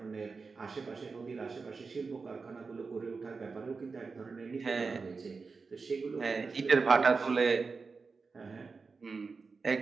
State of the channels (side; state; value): left; quieter; 4.6 dB